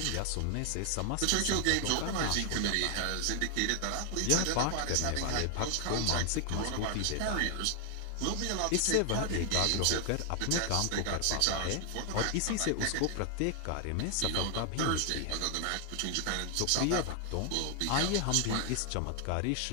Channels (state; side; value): different; both; correlation 0.00